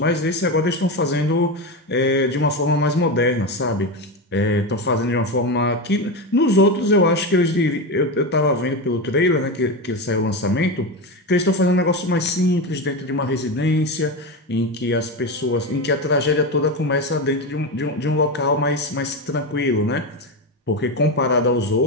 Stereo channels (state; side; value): normal; both; correlation 0.17